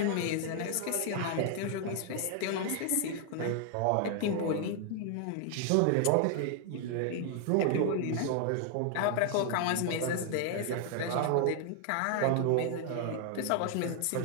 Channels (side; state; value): both; different; correlation 0.00